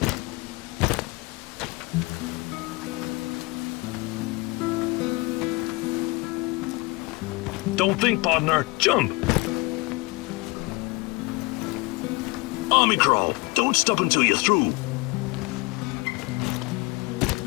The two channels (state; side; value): quieter; right; 25.6 dB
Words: Don't think, partner. Jump! Army crawl. Don't stop until you're through.